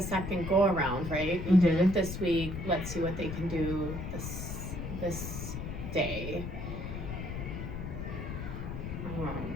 second go around, right? We did it this week, let's see what they can do this day.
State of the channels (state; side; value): noise; left; rumble, 6 dB below the sound